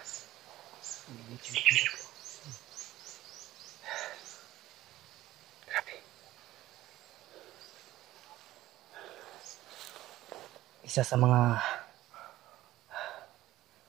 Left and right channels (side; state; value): left; quieter; 15.7 dB